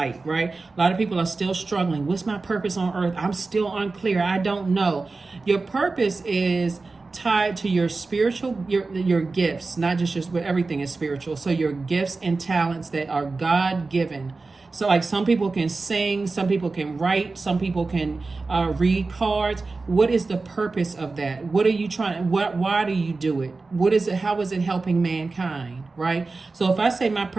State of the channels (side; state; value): left; quieter; 3.8 dB